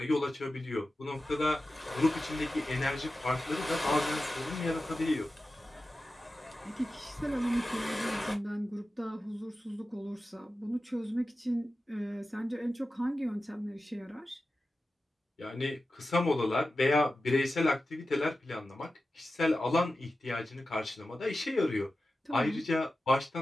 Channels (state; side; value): normal; both; correlation 0.93